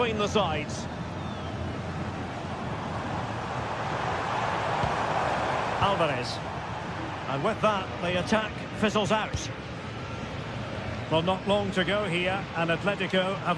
the sides. Alvarez. And with that, the attack fizzles out. Well, not long to go here, and Atletico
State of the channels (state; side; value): identical; both; correlation 1.00